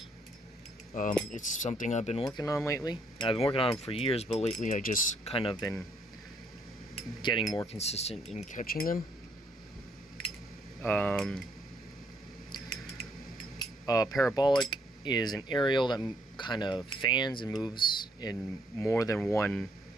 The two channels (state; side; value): normal; both; correlation 0.69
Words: It's something I've been working on lately. I've been working on them for years, but lately I just kind of been getting more consistent in catching them. Parabolic is an aerial that kind of fans and moves in more than one